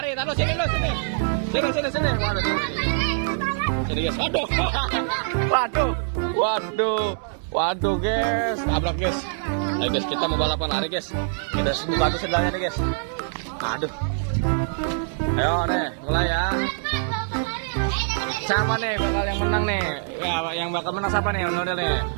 taruh sini. Sini. Waduh. Sini, guys. Waduh, guys. Tabrak, guys. Ayo, guys, kita mau balapan lari, guys. Kita buka tuh sendalnya nih, guys. Aduh. Ayo, nih, mulai ya. Siapa nih bakal yang menang nih? Ya, yang bakal menang siapa nih? Ondel nih.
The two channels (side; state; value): left; silent; 62 dB below the other